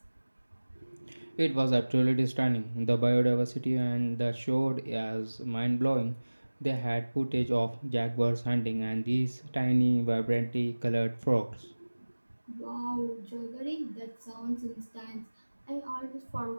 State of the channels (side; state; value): both; inverted; correlation -1.00